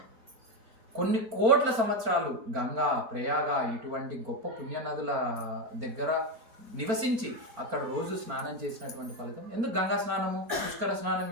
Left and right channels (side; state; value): left; late; 4.4 ms